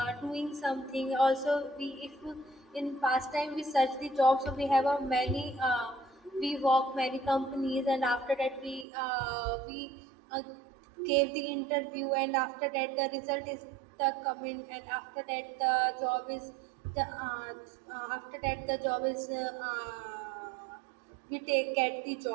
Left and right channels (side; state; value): left; drops out; at 8.8 s